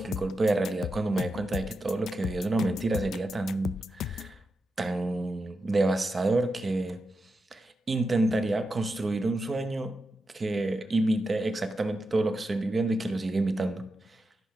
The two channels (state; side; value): normal; both; correlation 0.88